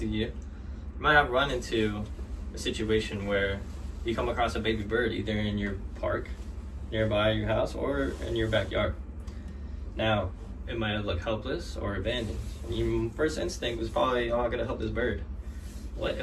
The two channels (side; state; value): both; identical; correlation 1.00